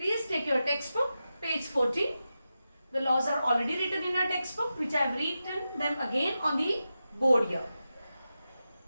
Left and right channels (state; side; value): inverted; both; correlation -0.91